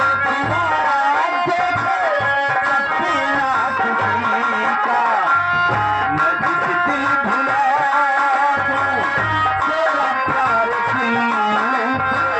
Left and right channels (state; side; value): identical; both; correlation 1.00